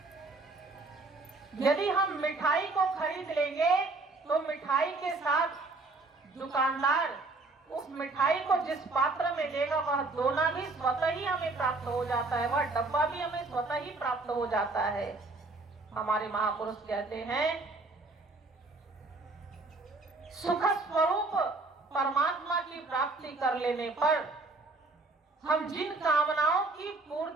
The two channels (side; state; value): left; quieter; 3.4 dB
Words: यदि हम मिठाई को खरीद लेंगे तो मिठाई के साथ दुकानदार उस मिठाई को जिस पात्र में देगा वह दोना भी स्वतः ही हमें प्राप्त हो जाता है, वह डब्बा भी हमें स्वतः ही प्राप्त हो जाता है। हमारे महापुरुष कहते हैं सुख स्वरूप परमात्मा की प्राप्ति कर लेने पर हम जिन कामनाओं की